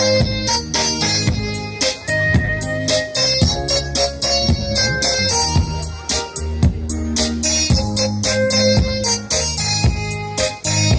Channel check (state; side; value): identical; both; correlation 1.00